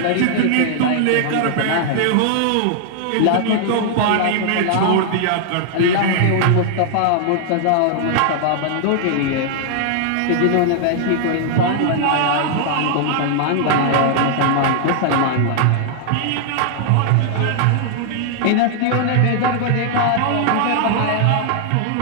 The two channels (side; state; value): both; different; correlation 0.00